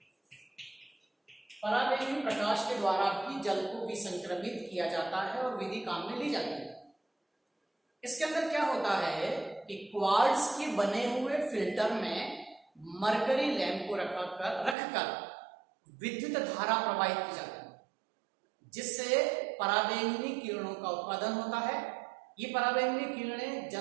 पराबैंगनी प्रकाश के द्वारा भी जल को विसंक्रमित किया जाता है और विधि काम में ली जाती है। इसके अंदर क्या होता है कि क्वार्ट्ज के बने हुए फिल्टर में मरकरी लैंप को रखकर विद्युत धारा प्रवाहित की जाती है, जिससे पराबैंगनी किरणों का उत्पादन होता है। ये पराबैंगनी किरणें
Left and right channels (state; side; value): drops out; left; at 14.8 s